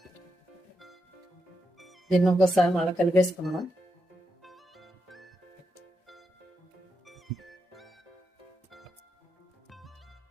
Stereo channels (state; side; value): normal; both; correlation 0.85